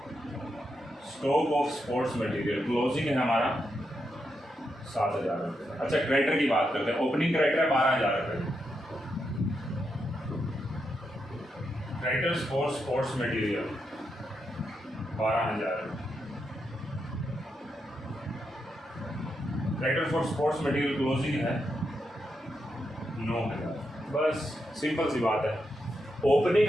stock of sports material, closing है हमारा 7,000 रुपये। अच्छा, क्रेडिटर की बात करते हैं। ओपनिंग क्रेडिटर है 12,000 रुपये, creditors for sports material 12,000, creditor for sports material closing है 9,000। बस सिंपल सी बात है। ओपनिंग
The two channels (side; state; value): both; normal; correlation 0.84